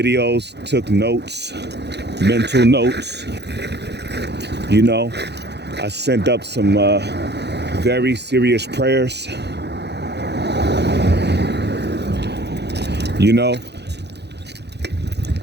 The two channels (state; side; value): late; left; 0.49 ms